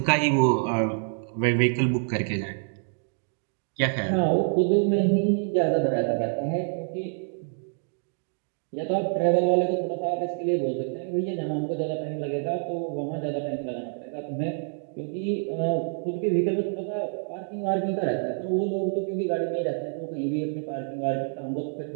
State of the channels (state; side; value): silent; left; 60 dB below the other